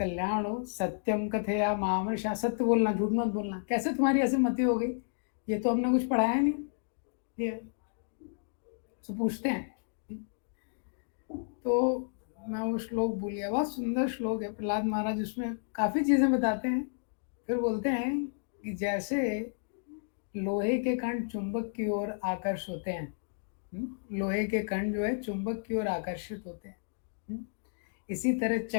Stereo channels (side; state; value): right; silent; digital silence